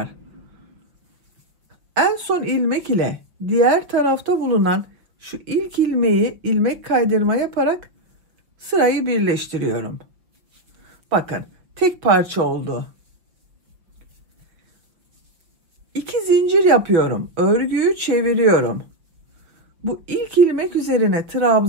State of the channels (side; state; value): left; late; 5.6 ms